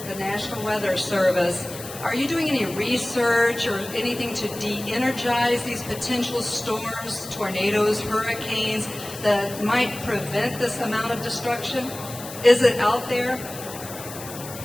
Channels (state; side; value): noise; left; hiss, 13 dB below the sound